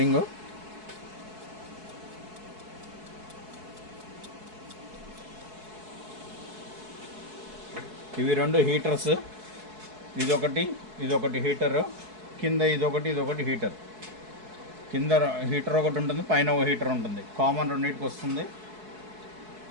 ఇవి రెండు హీటర్స్, ఇదొకటి హీటర్, కింద ఇదొకటి హీటర్. కింద హీటర్ ఒకటి ఉంటుంది, పైన ఒక హీటర్ ఉంటుంది. కామన్ రెండింటికి వస్తుంది.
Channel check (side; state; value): left; late; 4.7 ms